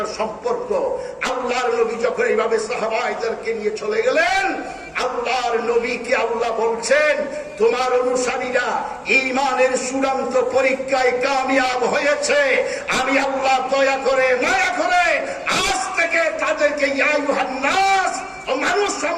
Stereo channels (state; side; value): identical; both; correlation 1.00